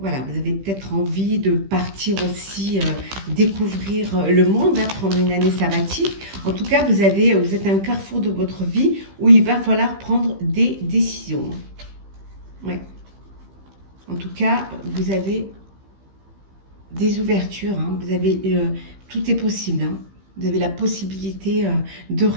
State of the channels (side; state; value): left; late; 15 ms